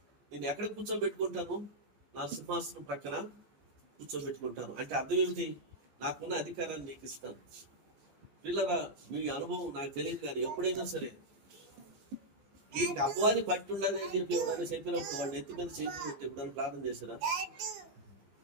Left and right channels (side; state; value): left; late; 15 ms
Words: నేను ఎక్కడ కూర్చోబెట్టుకుంటాను? నా సింహాసనం ప్రక్కన కూర్చోబెట్టుకుంటాను. అంటే అర్థం ఏమిటి? నాకున్న అధికారాన్ని నీకు ఇస్తాను. పిల్లరా, మీ అనుభవం నాకు తెలియదు, కానీ ఎప్పుడైనా సరే ఈ అపవాది పట్టి ఉండాలని చెప్పి ఎవరైనా చెప్పినప్పుడు వాడిని ఎత్తి మీద చేతులు పెట్టి ఎప్పుడైనా ప్రార్థన చేశారా?